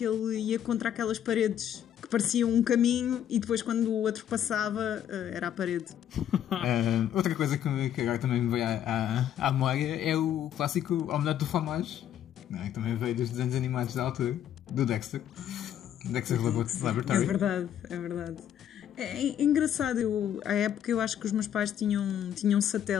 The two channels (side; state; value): right; quieter; 10.2 dB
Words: ele ia contra aquelas paredes que pareciam um caminho e depois quando o outro passava era a parede. Outra coisa que agora também me veio à memória é o clássico Omelete do Fromage, não é? Que também veio dos desenhos animados da altura, do Dexter's Laboratory. É verdade. É engraçado, à época eu acho que os meus pais tinham